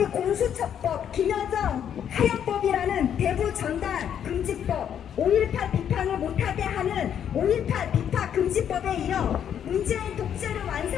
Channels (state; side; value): quieter; right; 9.1 dB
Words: 공수처법, 김여정 하역법이라는 대부 전단 금지법, 5.18 비판을 못하게 하는 5.18 비판 금지법에 이어 문재인 독재를